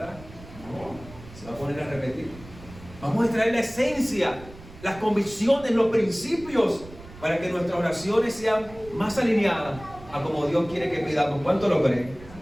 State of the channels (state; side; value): noise; right; rumble, 18 dB below the sound